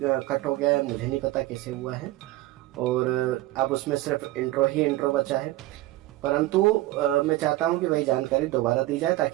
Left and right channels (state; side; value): quieter; left; 17.1 dB